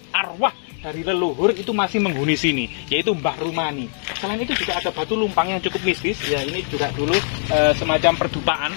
arwah dari leluhur itu masih menghuni sini, yaitu Mbah Rumani. Selain itu juga ada batu lumpang yang cukup mistis ya, ini juga dulu semacam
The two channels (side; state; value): right; silent; digital silence